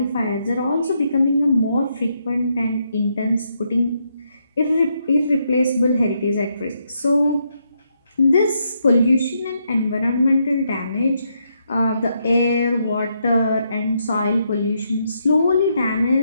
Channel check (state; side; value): inverted; both; correlation -0.78